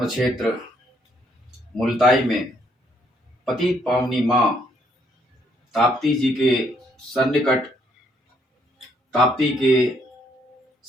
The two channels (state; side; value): normal; both; correlation 0.70